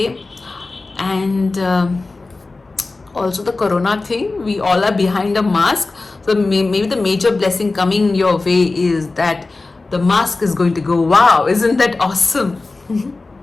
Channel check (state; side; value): quieter; right; 3.5 dB